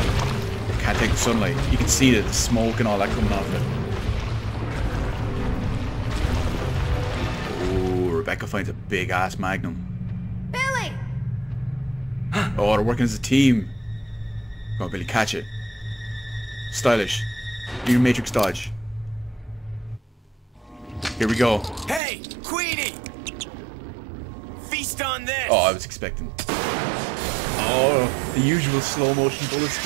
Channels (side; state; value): left; drops out; at 22.0 s